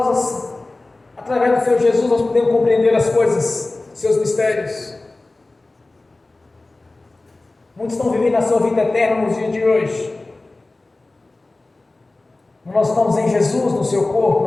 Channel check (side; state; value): right; quieter; 3.1 dB